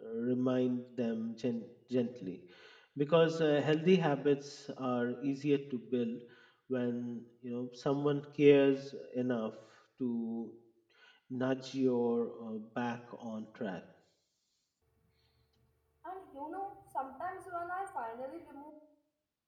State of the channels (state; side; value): identical; both; correlation 1.00